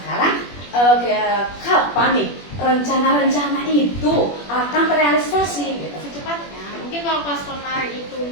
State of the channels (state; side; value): late; right; 21 ms